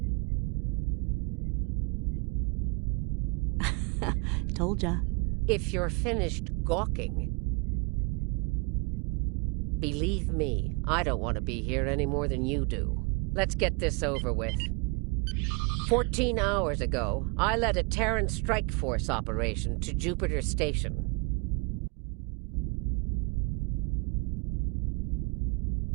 Told ya. If you're finished gawking, believe me, I don't want to be here any more than you do. Let's get this over with. 14 hours ago, I led a Terran strike force operation to Jupiter Station.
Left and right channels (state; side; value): quieter; left; 31.0 dB